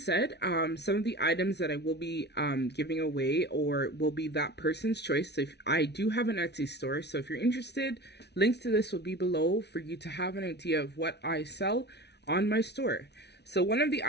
some of the items that I will be giving away or will be that person's choice. So if I do have an Etsy store, so if you're interested, links to this will be below for you to have an idea of what I sell on my store. So one of the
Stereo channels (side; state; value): right; late; 0.49 ms